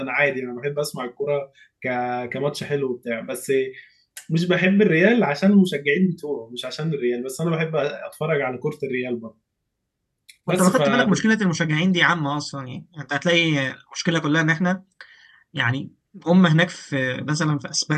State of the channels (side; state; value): both; identical; correlation 1.00